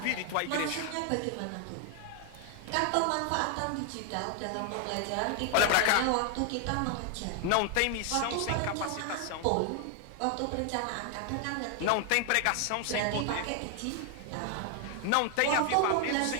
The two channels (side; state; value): both; different; correlation 0.00